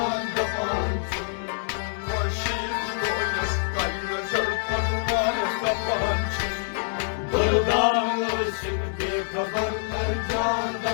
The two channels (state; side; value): silent; right; digital silence